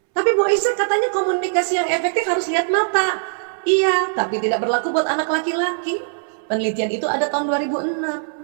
Tapi Bu Aisyah katanya komunikasi yang efektif harus lihat mata. Iya, tapi tidak berlaku buat anak laki-laki. Penelitian itu ada tahun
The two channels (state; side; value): silent; left; 65 dB below the other